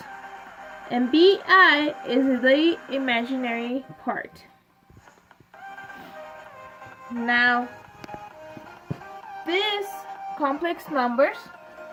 and bi is the imaginary part. Now, these complex numbers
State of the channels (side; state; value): both; identical; correlation 1.00